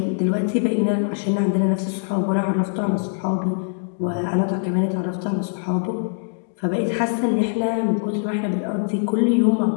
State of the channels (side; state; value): right; silent; digital silence